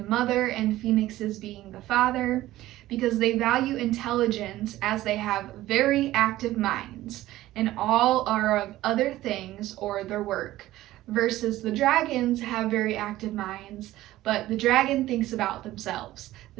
mother and phoenixes being the father, because they value intelligence as they have very active minds and all are of other things or their work, versus the dragons have very active minds, but the dragon thinks about themselves.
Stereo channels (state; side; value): quieter; left; 15.6 dB